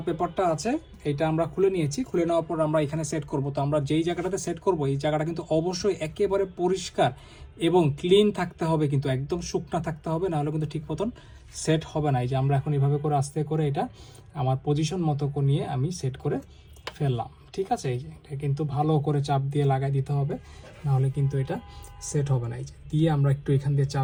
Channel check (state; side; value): identical; both; correlation 1.00